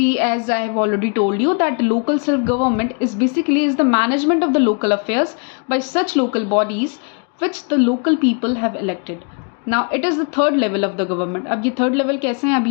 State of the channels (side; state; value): right; quieter; 38.4 dB